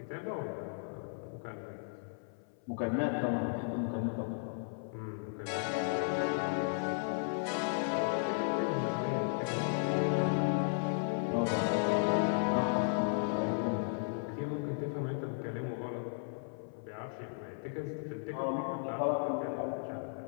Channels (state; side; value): silent; right; 54 dB below the other